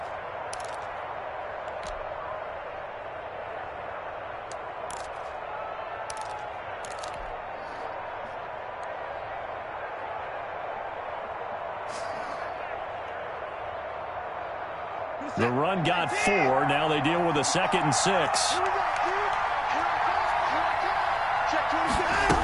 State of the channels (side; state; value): both; identical; correlation 1.00